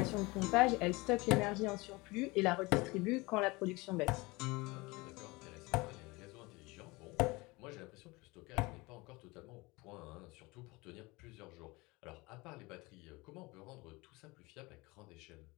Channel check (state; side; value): quieter; right; 23.8 dB